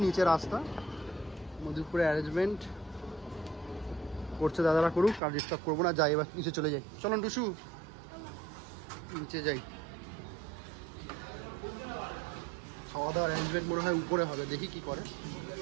নিচে রাস্তা, মধুপুরে অ্যারেঞ্জমেন্ট করছে দাদারা, করুক, আর ডিস্টার্ব করবো না। যাই এবার নিচে চলে যাই, চলুন টুসু নিচে যাই। খাওয়া দাওয়ার অ্যারেঞ্জমেন্ট মনে হয় উপরে হবে, দেখি কি করে।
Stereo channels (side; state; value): left; drops out; at 5.2 s